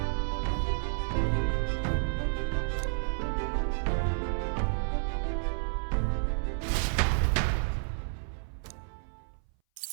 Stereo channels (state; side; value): silent; left; 57 dB below the other